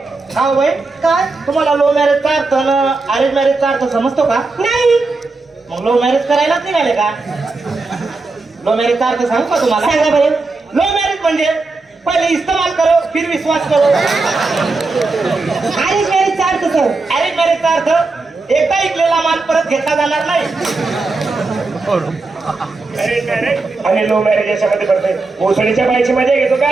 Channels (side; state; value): left; quieter; 3.6 dB